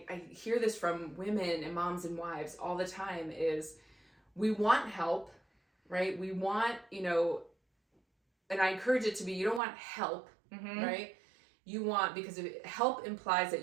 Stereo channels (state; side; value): drops out; left; at 9.6 s